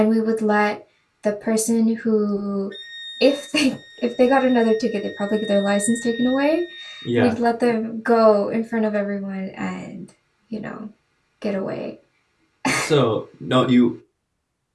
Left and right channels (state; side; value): identical; both; correlation 1.00